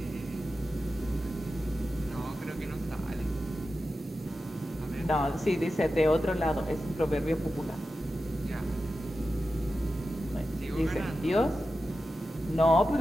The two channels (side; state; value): both; normal; correlation 0.92